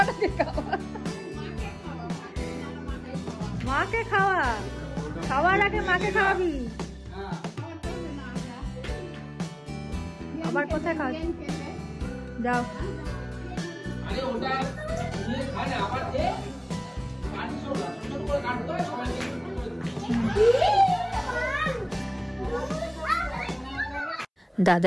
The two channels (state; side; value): identical; both; correlation 1.00